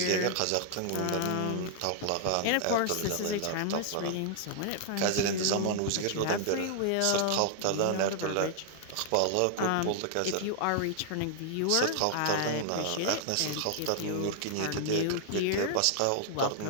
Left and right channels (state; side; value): different; both; correlation -0.01